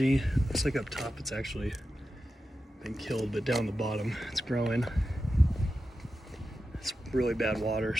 Looks like up top it's actually been killed, but down the bottom it's growing. It's really bad water,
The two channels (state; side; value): normal; both; correlation 0.91